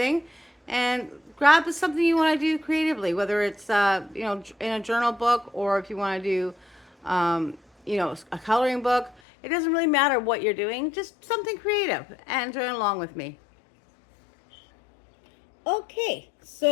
and grab something you want to do creatively, whether it's you know, in a journal book, or if you want to do you know, a coloring book. It doesn't really matter what you're doing, just something creative, and join along with me. Okay,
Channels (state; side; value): drops out; right; at 9.2 s